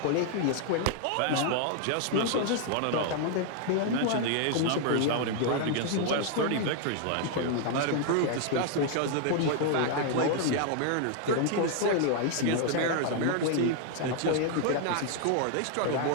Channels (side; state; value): both; different; correlation 0.00